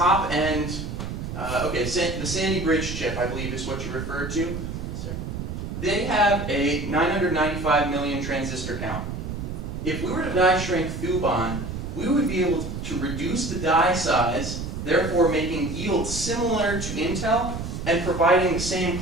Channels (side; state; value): right; noise; rumble, 6 dB below the sound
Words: the Sandy Bridge chip, I believe is what you referred to, they have a 995 million transistor count. If we were to die shrink Thuban, we would be able to reduce the die size, therefore making yield similar to Intel and providing the same